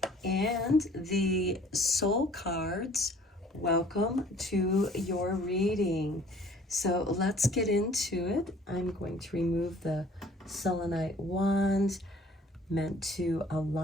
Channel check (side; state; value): both; normal; correlation 0.54